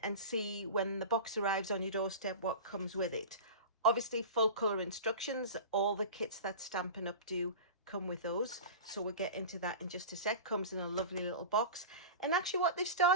see when the box arrives on your doorstep what comes with it. Obviously full color instructions, all the kits that Stampin' Up do come with those. So we'll get into that in just a sec. Comes in a lovely little box. And actually what they've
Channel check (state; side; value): inverted; both; correlation -0.31